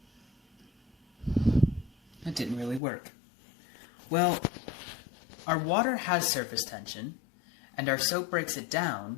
That didn't really work. Well, our water has surface tension, and our soap breaks it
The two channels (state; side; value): drops out; right; at 2.8 s